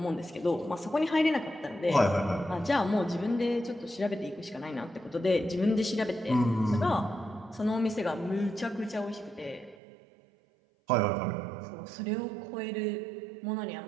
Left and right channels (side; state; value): left; drops out; at 9.8 s